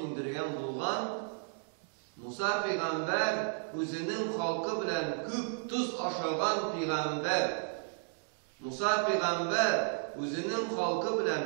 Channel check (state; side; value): silent; left; 55 dB below the other